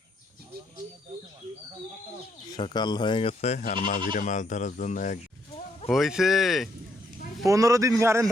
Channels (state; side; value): normal; both; correlation 0.73